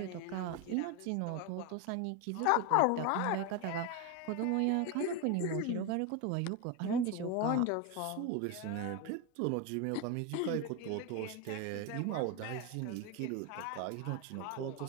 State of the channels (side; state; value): both; different; correlation 0.02